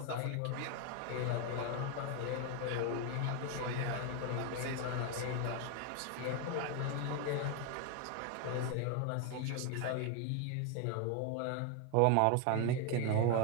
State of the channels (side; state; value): both; different; correlation 0.01